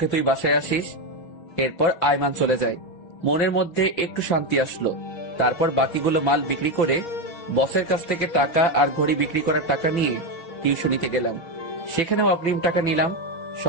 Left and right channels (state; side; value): late; right; 5.9 ms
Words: তুই বাসায় আসিস। এরপর আইমান চলে যায়। মনের মধ্যে একটু শান্তি আসলো। তারপর বাকিগুলো মাল বিক্রি করে বসের কাছ থেকে টাকা আর ঘড়ি বিক্রি করার টাকা নিয়ে টিউশনিতে গেলাম। সেখানেও অগ্রিম টাকা নিলাম,